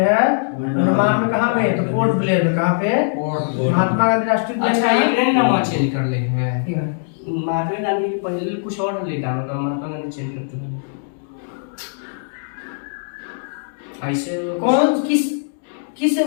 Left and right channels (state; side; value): silent; right; digital silence